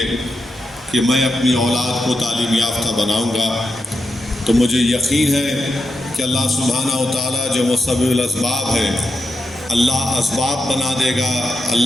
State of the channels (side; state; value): both; normal; correlation 0.87